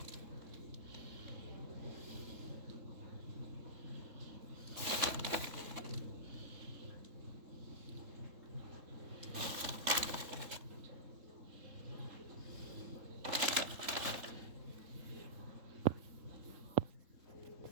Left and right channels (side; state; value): left; late; 3.7 ms